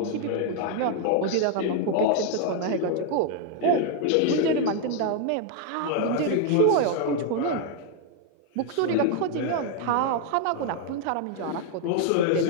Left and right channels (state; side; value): different; both; correlation 0.00